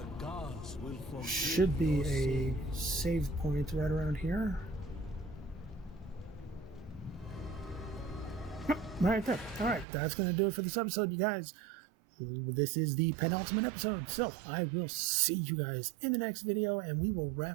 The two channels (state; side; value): drops out; left; at 9.9 s